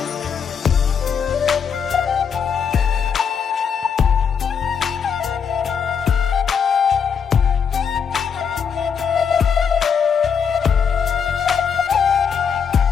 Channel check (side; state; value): right; quieter; 6.9 dB